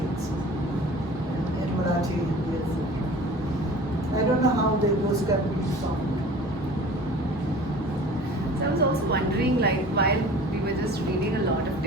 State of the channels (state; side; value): normal; both; correlation 0.43